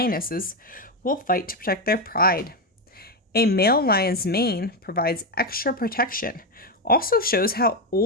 will fight to protect their pride. A male lion's mane provides extra protection, also shows how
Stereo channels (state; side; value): normal; both; correlation 0.09